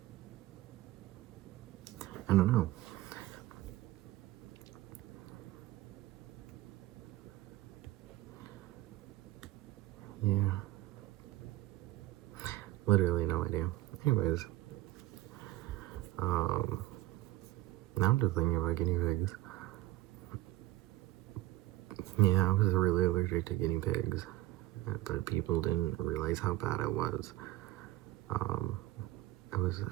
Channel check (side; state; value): left; quieter; 16.7 dB